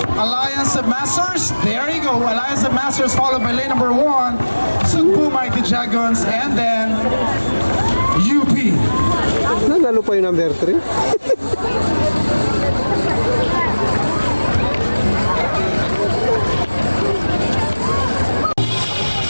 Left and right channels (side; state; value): both; inverted; correlation -1.00